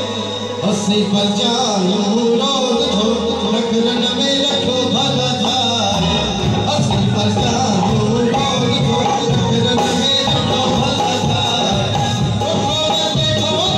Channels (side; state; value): both; identical; correlation 1.00